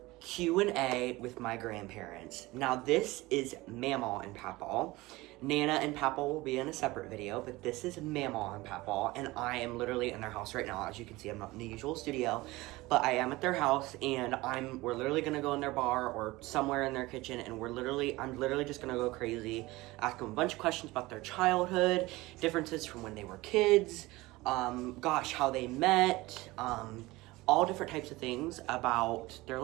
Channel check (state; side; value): quieter; left; 20.3 dB